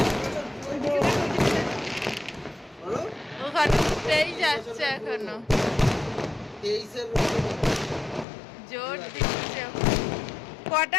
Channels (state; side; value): drops out; right; at 8.2 s